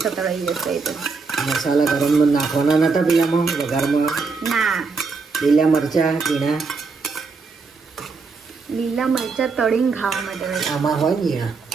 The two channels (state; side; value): quieter; left; 4.5 dB